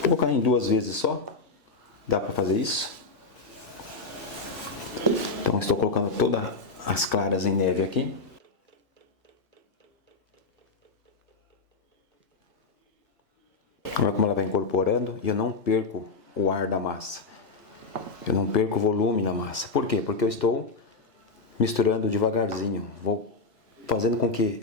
colocar em 2 vezes só. Dá para fazer isso? Então estou colocando todas as claras em neve aqui. Olha como ela vai incorporando e eu não perco o ar da massa. Eu não perco o volume na massa. Por quê? Porque eu estou misturando devagarzinho. Vou fazendo com que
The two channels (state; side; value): quieter; right; 3.9 dB